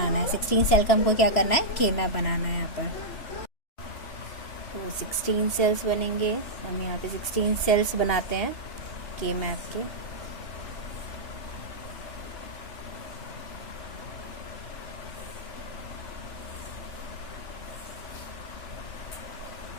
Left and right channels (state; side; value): late; right; 2.8 ms